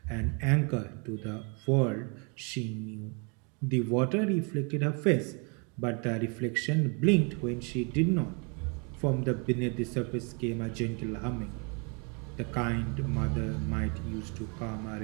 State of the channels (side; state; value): left; quieter; 34.6 dB